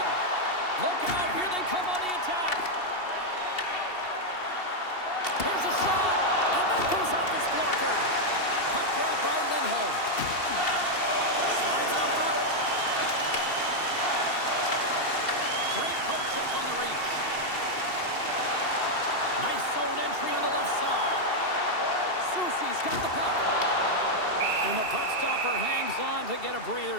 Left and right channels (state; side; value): late; right; 2.7 ms